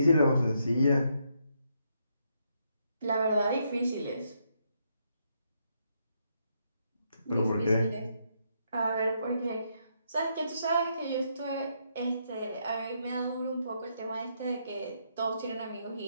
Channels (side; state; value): both; inverted; correlation -0.77